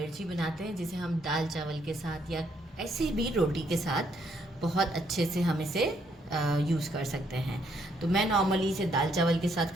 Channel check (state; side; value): normal; both; correlation 0.72